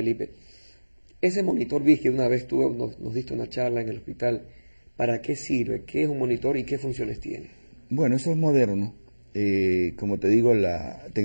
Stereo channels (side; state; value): both; inverted; correlation -1.00